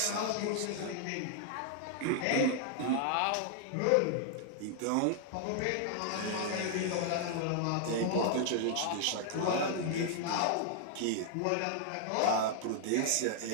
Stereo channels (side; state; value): both; different; correlation 0.00